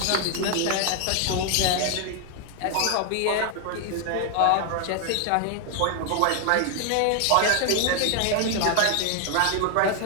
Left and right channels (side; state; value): both; different; correlation 0.00